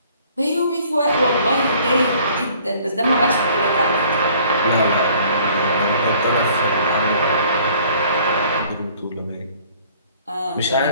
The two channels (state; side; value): inverted; both; correlation -0.56